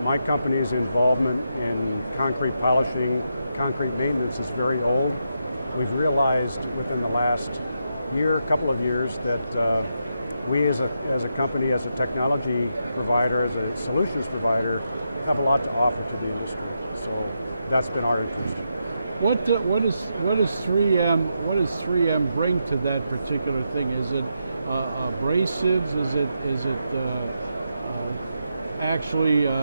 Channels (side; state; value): both; inverted; correlation -0.83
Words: My company's involvement in concrete polishing, concrete maintenance is very old. We've realized within the last couple of years, that we as a company, as a technology provider, as a solutions provider, have a lot to offer to the industry. So that's been our interest. What does 3M bring to that particular thing? Is it abrasives? Is it actually